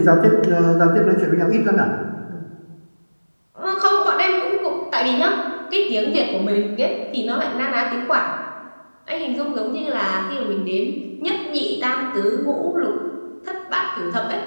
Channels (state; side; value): inverted; both; correlation -1.00